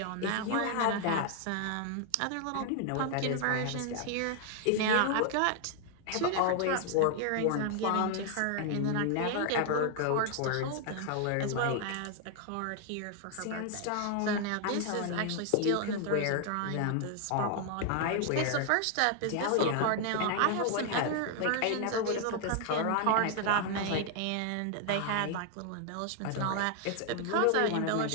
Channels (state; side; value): different; both; correlation 0.00